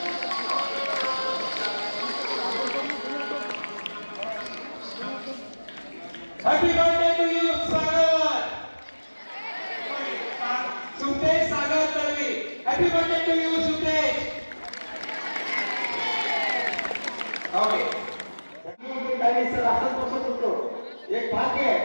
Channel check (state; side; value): inverted; both; correlation -1.00